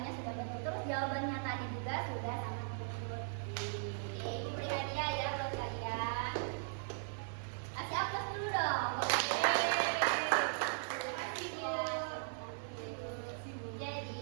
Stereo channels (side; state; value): left; silent; digital silence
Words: sudah betul. Terus jawabannya tadi juga sudah sangat betul. Oke, ini beri hadiah ya buat kalian. Kasih aplaus dulu dong.